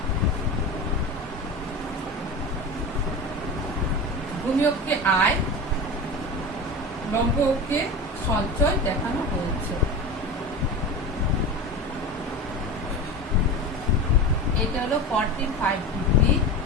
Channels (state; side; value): normal; both; correlation 0.27